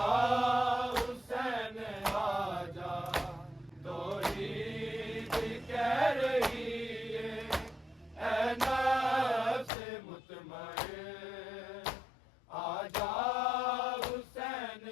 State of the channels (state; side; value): drops out; right; at 9.7 s